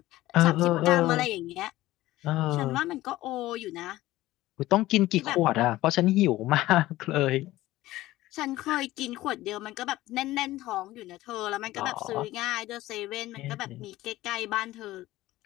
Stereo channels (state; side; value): quieter; right; 16.6 dB